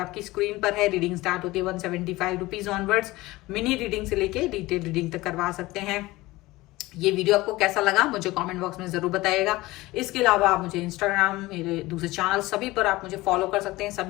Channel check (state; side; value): quieter; right; 19.5 dB